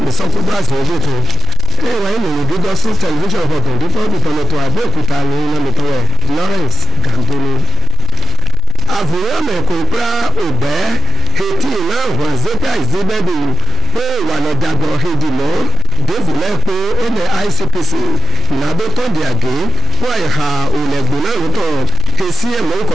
lọ́sọ̀tò àti ọjọ́ tó ẹ̀wà ìlòyìn gígọ́ sí tẹlifíṣàn ọ̀tọ̀ dífọ́ọ̀dù tọ̀nàtọ̀ Abẹ́òkúta ní lọ́mìtọ́wẹ̀ Lawrence Gandoni. àfòwọ́ mẹ́kọ̀ọ́ pé òbẹ́ etí náà wọ́n zẹ́pẹ́ àìsíbẹ́bù pé ìwà lọ́dàgbọ̀ hedimọ́ dófìlẹ́ pé ó lẹ ICPC ìnáwó tó di àgé wọ́n ìhà òlẹ̀gbọ̀n náà lótọ́ èsì ẹ̀mọ́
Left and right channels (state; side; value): normal; both; correlation 0.68